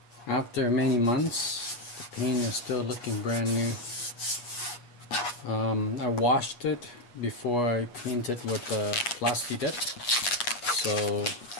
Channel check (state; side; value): late; right; 8.3 ms